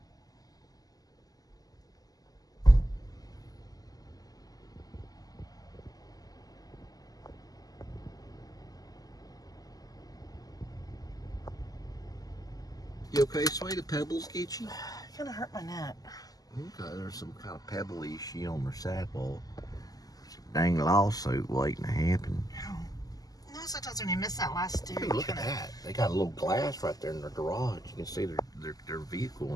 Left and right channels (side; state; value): right; late; 0.18 ms